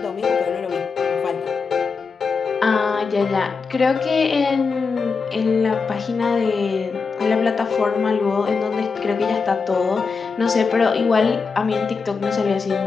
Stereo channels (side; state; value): right; quieter; 5.0 dB